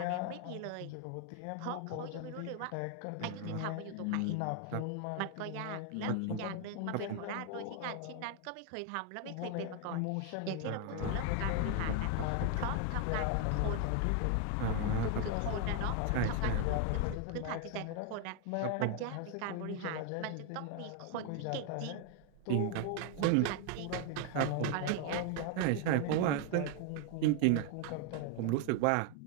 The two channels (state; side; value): different; both; correlation 0.01